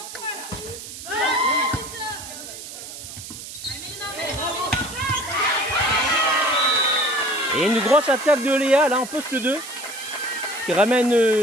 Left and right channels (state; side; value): noise; right; hiss, 12 dB below the sound